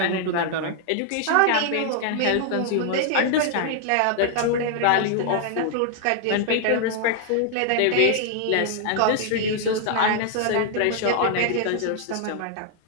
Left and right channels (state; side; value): different; both; correlation 0.00